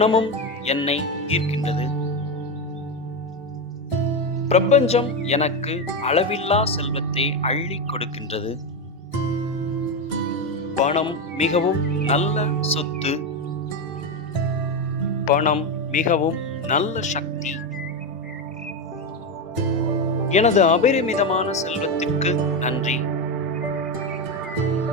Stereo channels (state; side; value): normal; both; correlation 0.12